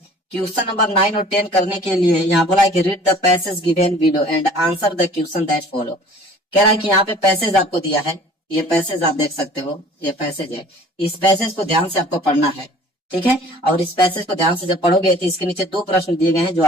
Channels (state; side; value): normal; both; correlation 0.49